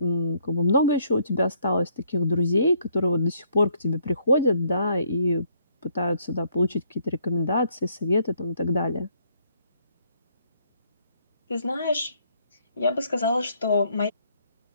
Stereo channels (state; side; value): inverted; both; correlation -0.68